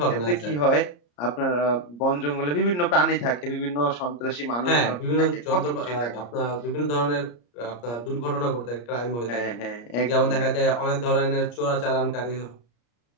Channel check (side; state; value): right; late; 34 ms